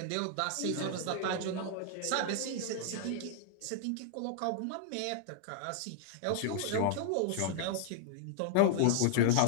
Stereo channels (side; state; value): both; different; correlation 0.00